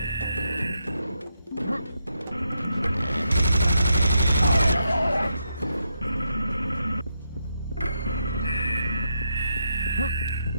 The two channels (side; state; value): both; inverted; correlation -0.81